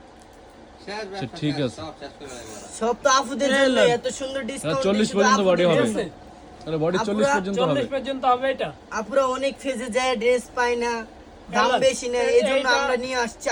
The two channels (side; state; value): both; identical; correlation 1.00